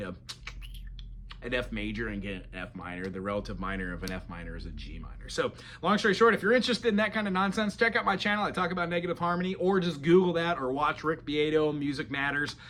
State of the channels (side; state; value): both; identical; correlation 1.00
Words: F major and get an F minor. The relative minor of an F minor is a G minor. So long story short, if you're interested in that kind of nonsense, check out my channel. I talk about negative harmony, or just Google that, or watch Rick Beato, Music Matters,